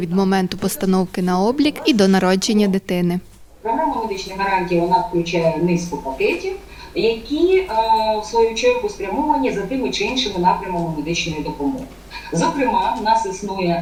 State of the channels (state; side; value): identical; both; correlation 1.00